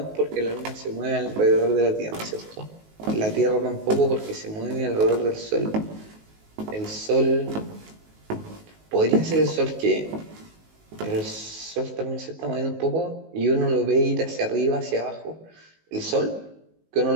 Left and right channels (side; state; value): left; late; 19 ms